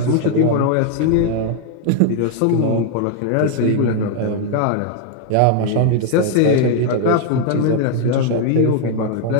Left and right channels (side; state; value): both; different; correlation 0.00